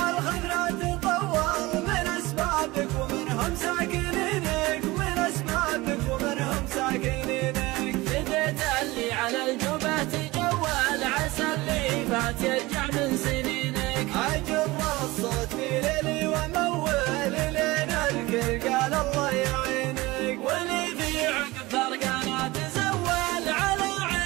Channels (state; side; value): quieter; left; 20.7 dB